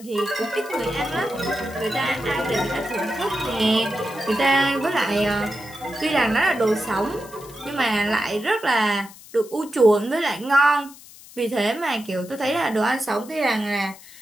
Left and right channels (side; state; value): left; noise; hiss, 20 dB below the sound